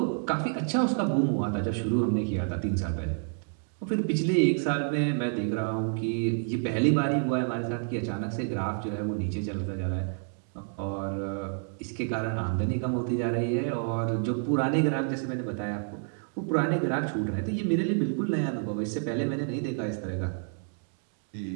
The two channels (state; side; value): silent; left; 59 dB below the other